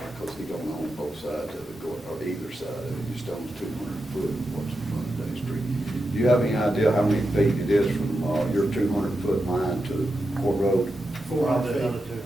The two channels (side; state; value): both; normal; correlation 0.88